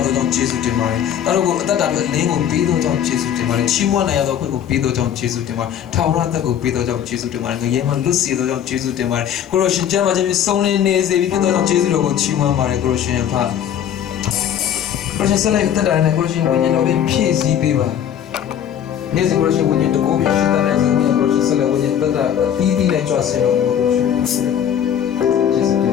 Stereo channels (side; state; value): right; quieter; 9.6 dB